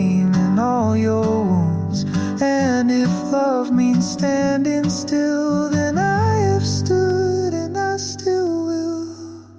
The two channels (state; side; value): identical; both; correlation 1.00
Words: in all your wounds, and if love means standing still, then I have stood and I still will.